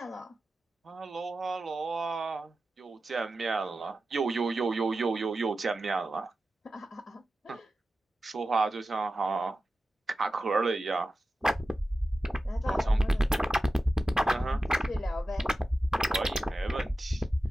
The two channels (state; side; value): normal; both; correlation 0.93